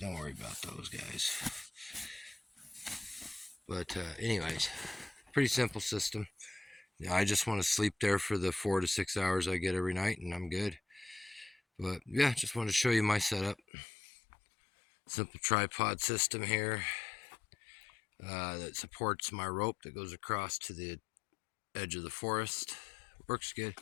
worry about those guys. But anyways, pretty simple system. I just want to sleep there for the 4 to 6 hours I get every night, and I'm good. But yeah, just wanted to show you my setup. Simple tripod system here that supports my rope that goes across to the edge of the forest. Works good.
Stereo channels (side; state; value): right; drops out; at 13.6 s